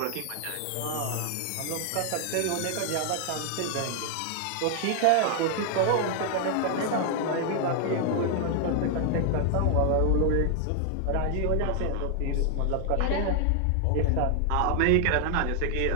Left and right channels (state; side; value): different; both; correlation 0.00